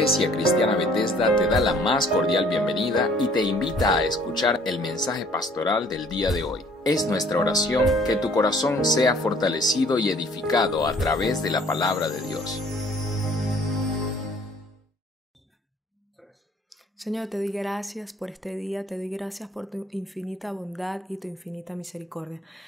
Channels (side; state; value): both; normal; correlation 0.57